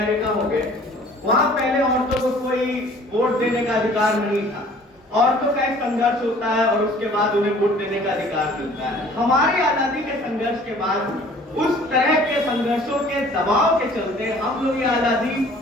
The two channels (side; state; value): both; normal; correlation 0.51